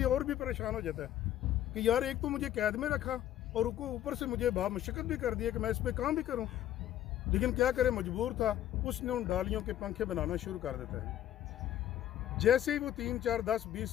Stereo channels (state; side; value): quieter; right; 12.0 dB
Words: और भी परेशान हो जाता है कि यार एक तो मुझे कैद में रखा और उनको ऊपर से मुझे बहुत मुश्किल भी कर दिया कि मैं इस पर काम भी करूँ, लेकिन क्या करे, मजबूर था। उसने उन डालियों के पंखे बनाना शुरू कर देता है। जैसे ही वो 3, 4, 10, 20,